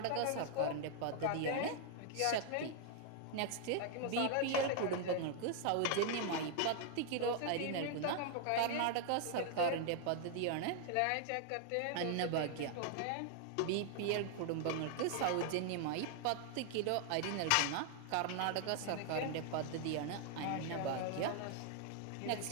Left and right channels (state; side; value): different; both; correlation 0.00